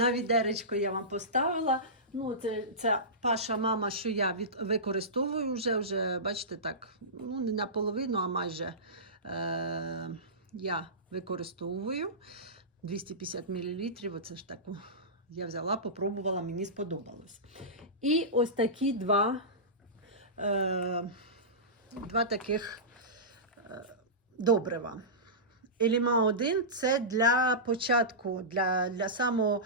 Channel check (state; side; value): normal; both; correlation -0.19